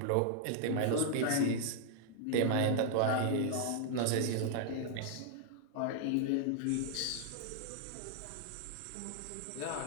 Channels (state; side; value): different; both; correlation -0.01